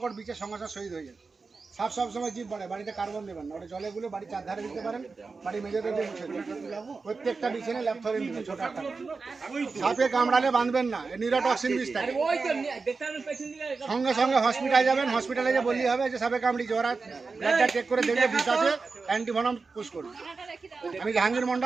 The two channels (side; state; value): left; quieter; 4.3 dB